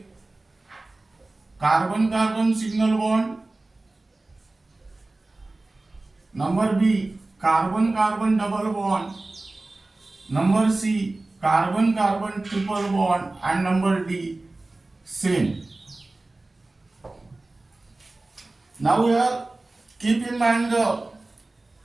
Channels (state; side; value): quieter; left; 3.0 dB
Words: carbon-carbon single bond. Number B, carbon-carbon double bond. Number C, carbon-carbon triple bond, and number D, same. Now here keep in mind the